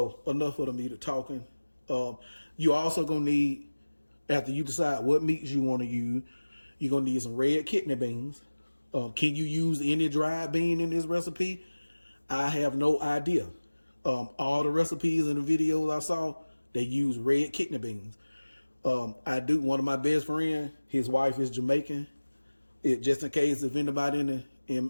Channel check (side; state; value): both; inverted; correlation -1.00